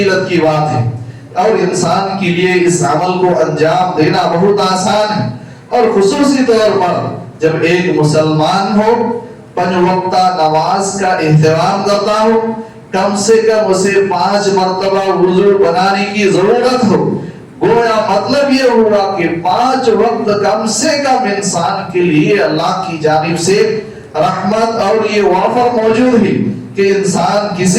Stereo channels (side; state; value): both; identical; correlation 1.00